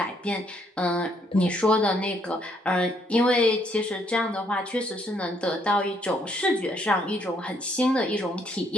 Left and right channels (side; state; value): both; normal; correlation 0.70